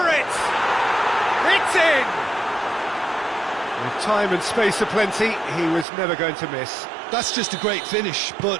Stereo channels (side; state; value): left; drops out; at 5.9 s